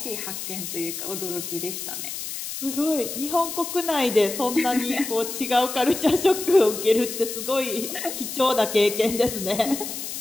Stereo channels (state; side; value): noise; left; hiss, 7 dB below the sound